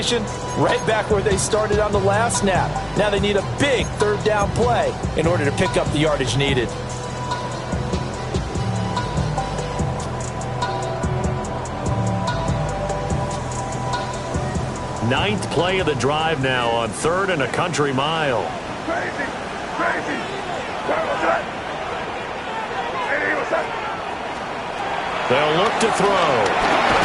right back where they started on the last snap. Now they need a big 3rd down play in order to pick up the yardage needed. Ninth play of the drive now on 3rd and a country mile. Crazy. They'll look to throw.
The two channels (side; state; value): both; identical; correlation 1.00